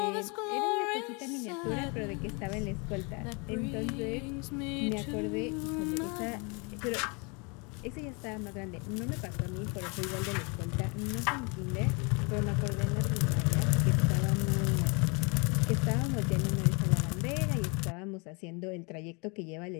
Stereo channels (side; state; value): right; quieter; 31.7 dB